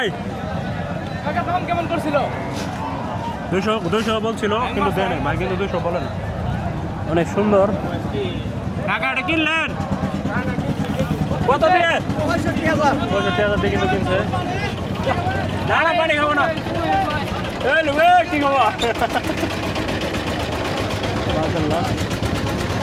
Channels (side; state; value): both; identical; correlation 1.00